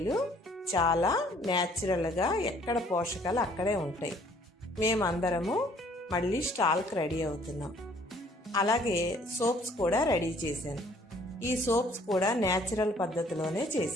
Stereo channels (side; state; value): both; normal; correlation 0.59